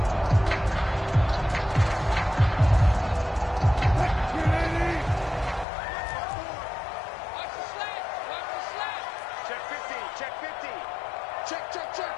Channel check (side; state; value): right; drops out; at 5.7 s